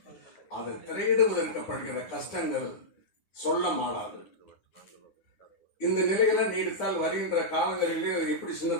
அதை திரையிடுவதற்கப்படுகிற கஷ்டங்கள் சொல்ல மாறாது. இந்த நிலைகளை நீடித்தால் வருகின்ற காலங்களிலே எப்படி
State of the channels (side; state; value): right; late; 9.7 ms